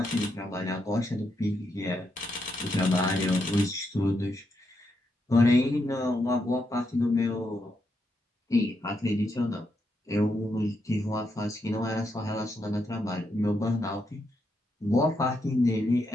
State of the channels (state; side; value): normal; both; correlation 0.81